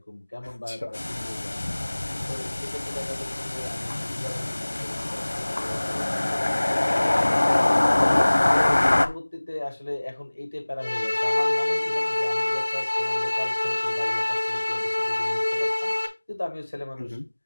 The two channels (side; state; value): both; inverted; correlation -1.00